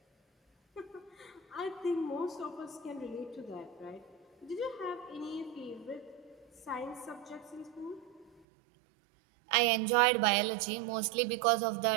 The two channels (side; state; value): left; drops out; at 8.4 s